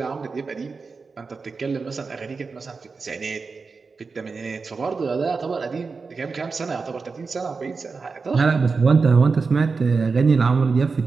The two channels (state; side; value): quieter; left; 4.6 dB